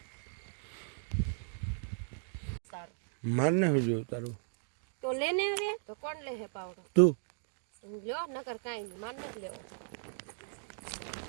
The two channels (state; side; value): silent; left; digital silence